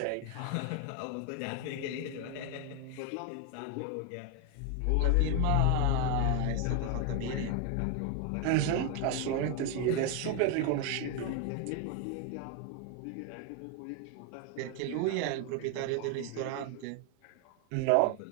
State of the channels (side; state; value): both; different; correlation 0.01